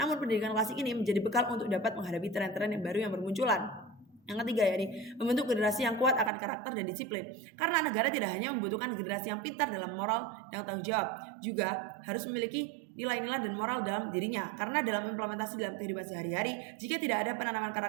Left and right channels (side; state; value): left; drops out; at 6.3 s